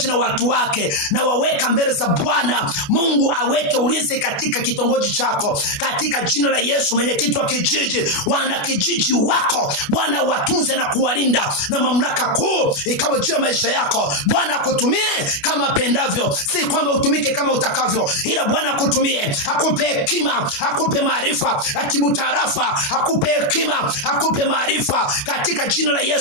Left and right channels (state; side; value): late; right; 29 ms